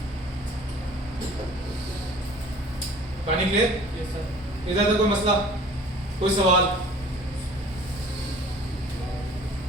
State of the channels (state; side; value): normal; both; correlation 0.48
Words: पानी क्लियर, इधर तो कोई मसला, कोई सवाल?